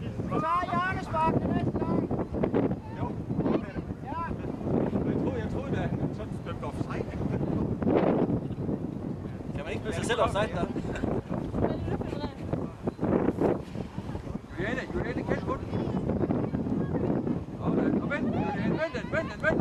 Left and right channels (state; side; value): identical; both; correlation 1.00